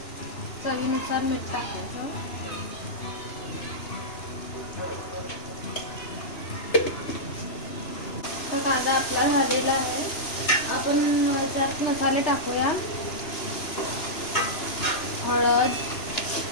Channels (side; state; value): right; late; 2.9 ms